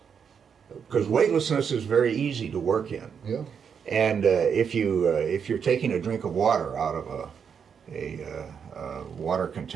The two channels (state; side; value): quieter; left; 7.0 dB